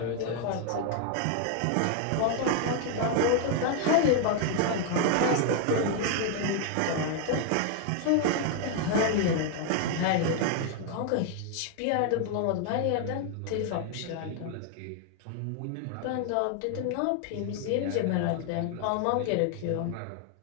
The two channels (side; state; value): both; different; correlation 0.00